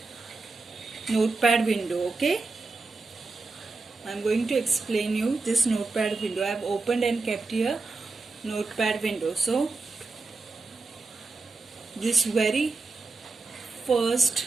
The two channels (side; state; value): left; quieter; 3.8 dB